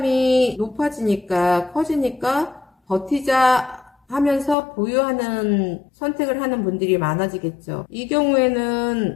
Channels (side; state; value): right; drops out; at 4.5 s